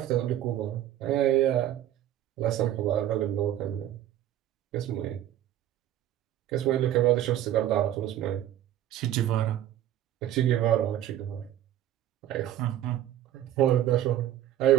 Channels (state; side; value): quieter; left; 12.3 dB